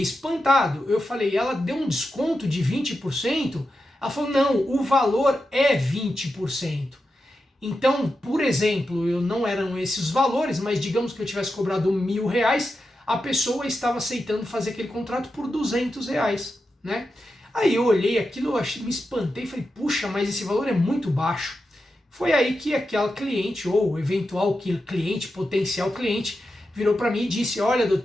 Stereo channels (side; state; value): both; normal; correlation 0.89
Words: Eu falei, ela deu um desconto de 20%? Ela falou, não, o valor é 20%. Então, por exemplo, não eram esses valores, mas digamos que eu tivesse cobrado R$1.000, a pessoa estava aceitando fazer aquele contrato por R$200, né? Aí eu olhei aquilo, me espantei e falei, puxa, mas esse valor é muito baixo. Foi aí que aquela cliente, ou eventual cliente, potencial cliente, virou para mim e disse, olha